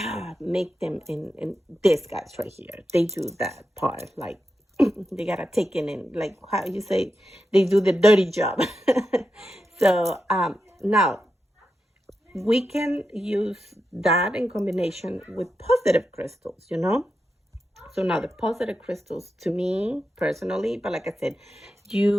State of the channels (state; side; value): normal; both; correlation 0.88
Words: make them in these guys right here. They do that part, like they gotta take in and like how you say, they do the dirty job. So now we can use that in combination with positive crystals, you know? So now the positive crystals to me personally, but like I said,